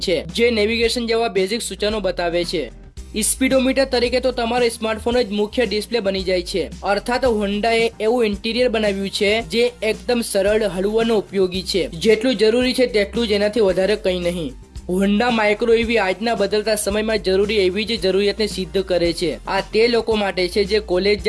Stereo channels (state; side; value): identical; both; correlation 1.00